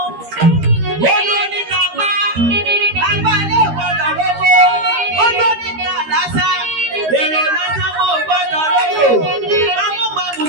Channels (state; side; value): late; left; 13 ms